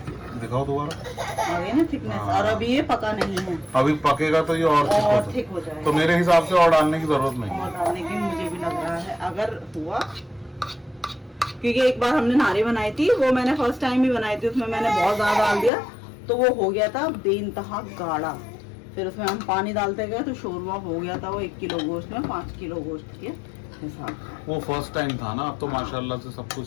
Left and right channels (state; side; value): drops out; right; at 15.7 s